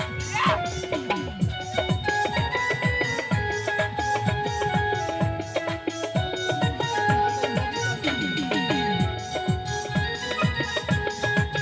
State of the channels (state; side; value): identical; both; correlation 1.00